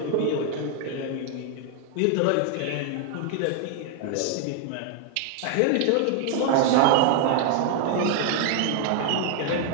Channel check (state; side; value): different; both; correlation 0.00